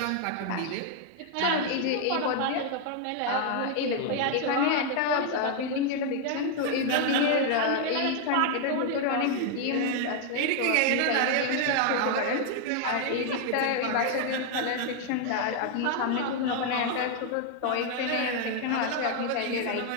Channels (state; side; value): different; both; correlation 0.00